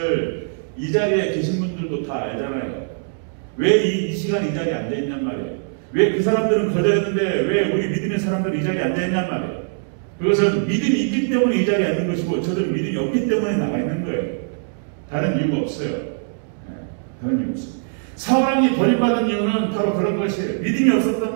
이 자리에 계신 분들도 다 알잖아요. 왜 이 시간 이 자리에 앉아있냔 말이에요. 왜 그 사람들은 거절했는데 왜 우리 믿음의 사람들은 이 자리에 앉아있냔 말이에요. 그것은 믿음이 있기 때문에 이 자리에 앉는 것이고 저들은 믿음이 없기 때문에 나가 있는 거예요. 다른 이유가 없어요. 다른 이유 없어요. 사울왕이 버림받은 이유는 바로 그런 것이에요. 믿음이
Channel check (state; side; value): silent; left; digital silence